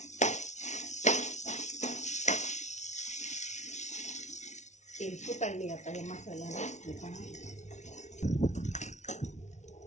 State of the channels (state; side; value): late; right; 0.33 ms